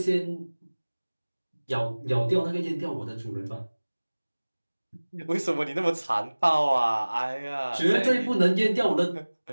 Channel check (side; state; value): both; inverted; correlation -1.00